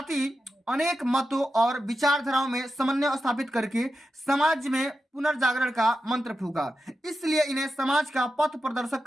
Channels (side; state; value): both; normal; correlation 0.90